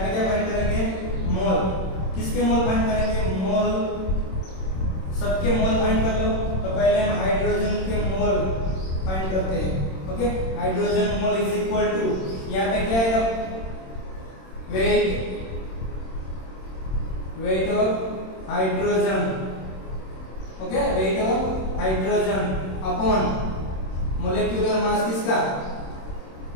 पे क्या फाइंड करेंगे? मोल। किसके मोल फाइंड करेंगे? मोल, सबके मोल फाइंड कर लो। तो पहले हम हाइड्रोजन के मोल फाइंड करते हैं। Okay, hydrogen mole is equal to, यहाँ पे क्या आएगा? Weight of hydrogen. Okay, weight of hydrogen upon molecular mass. किसका?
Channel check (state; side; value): late; right; 26 ms